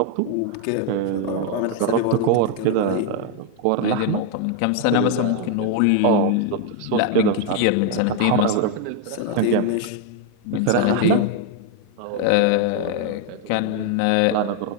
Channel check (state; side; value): different; both; correlation 0.01